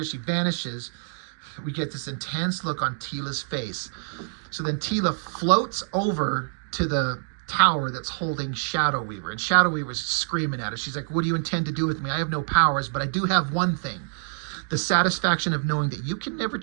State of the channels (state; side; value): silent; left; 55 dB below the other